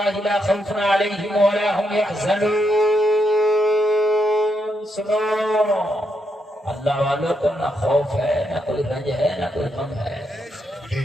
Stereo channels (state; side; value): normal; both; correlation 0.80